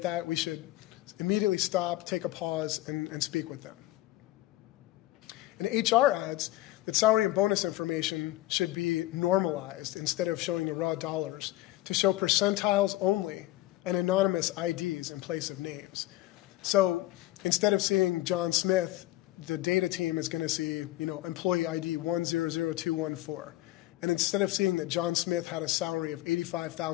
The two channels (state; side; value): quieter; right; 16.4 dB